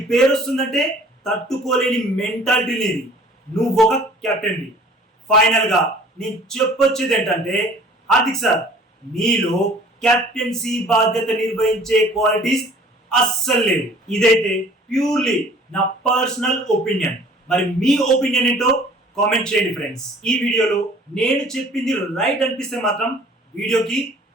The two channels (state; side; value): normal; both; correlation 0.51